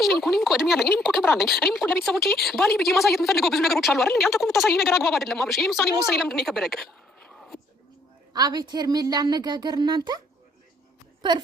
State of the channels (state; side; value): normal; both; correlation 0.66